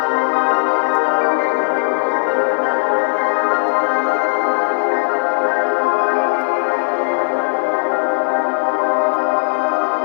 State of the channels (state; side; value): silent; right; digital silence